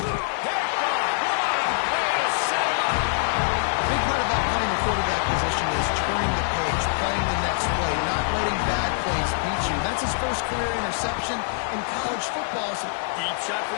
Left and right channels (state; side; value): silent; right; digital silence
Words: Picked off. What a way to set him up. A big part about playing the quarterback position is turning the page, playing the next play, not letting bad plays beat you. That's his first career interception in college football. So deep shot for